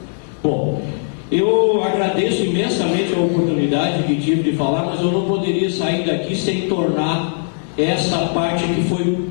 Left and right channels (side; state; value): right; silent; 61 dB below the other